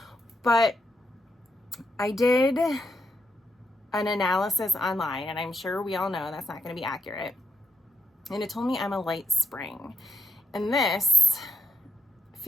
But I did an analysis online, and I'm sure we all know that's not going to be accurate. And it told me I'm a light spring, and this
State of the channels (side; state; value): both; normal; correlation 0.82